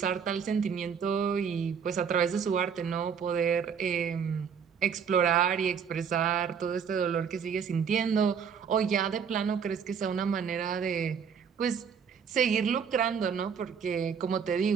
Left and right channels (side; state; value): left; quieter; 7.0 dB